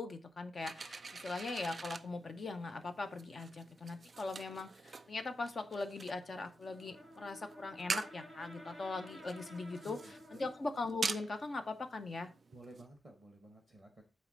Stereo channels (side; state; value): both; normal; correlation 0.87